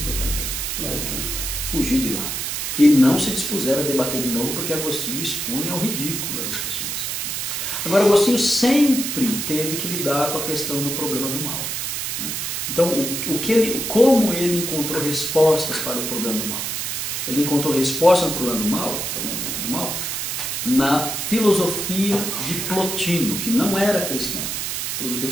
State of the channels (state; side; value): noise; right; hiss, 3 dB below the sound